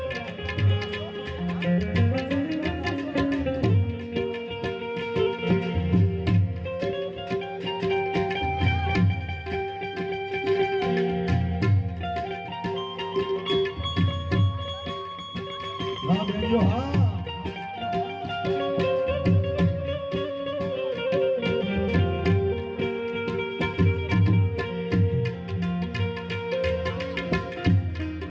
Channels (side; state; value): both; identical; correlation 1.00